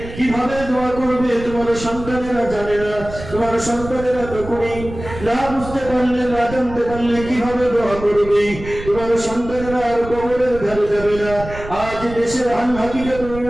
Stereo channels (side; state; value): right; noise; rumble, 12 dB below the sound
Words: কিভাবে দোয়া করবে তোমার সন্তানেরা জানে না। তোমার সন্তানেরা তখনই না বুঝতে পারলে, না জানতে পারলে কিভাবে দোয়া করবে। তোমার সন্তানেরা আর কবরের ধারে যাবে না। আজ দেশের হাল হাকিকত